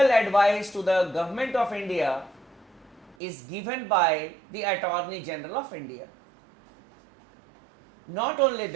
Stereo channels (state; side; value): drops out; left; at 3.2 s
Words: advice to the government of India is given by the Attorney General of India. Not only